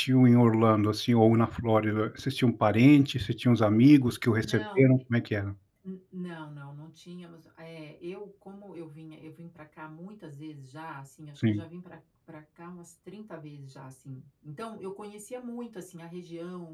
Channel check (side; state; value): both; identical; correlation 1.00